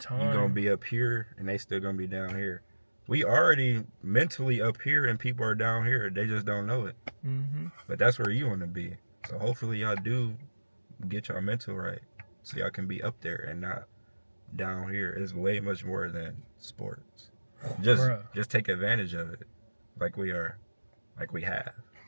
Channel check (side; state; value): both; inverted; correlation -1.00